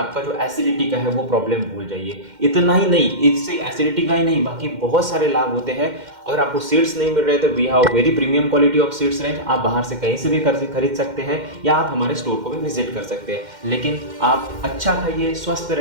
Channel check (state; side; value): late; left; 2.1 ms